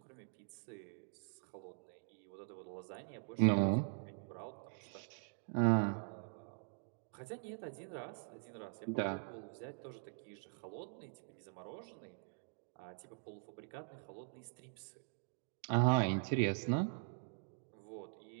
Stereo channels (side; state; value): left; silent; digital silence